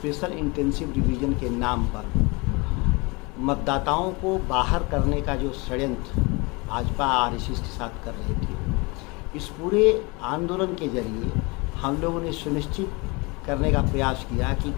इंटेंसिव रिवीजन के नाम पर मतदाताओं को बाहर करने का जो षड्यंत्र भाजपा आरएसएस के साथ कर रहे थे, इस पूरे आंदोलन के जरिए हम लोगों ने सुनिश्चित करने का प्रयास किया कि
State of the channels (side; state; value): right; quieter; 27.0 dB